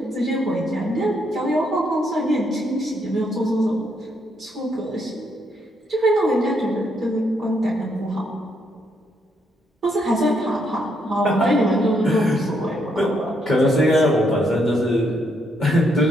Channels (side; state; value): both; normal; correlation 0.75